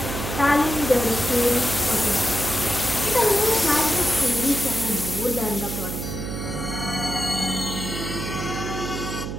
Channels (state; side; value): noise; right; hum, 5 dB below the sound